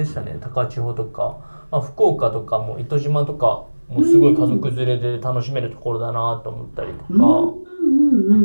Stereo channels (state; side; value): inverted; both; correlation -1.00